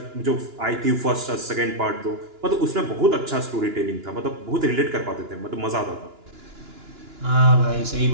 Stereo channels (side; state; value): left; late; 2.9 ms